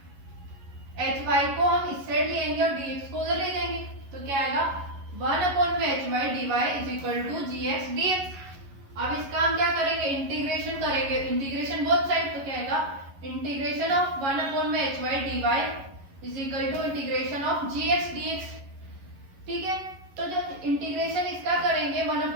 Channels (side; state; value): left; late; 11 ms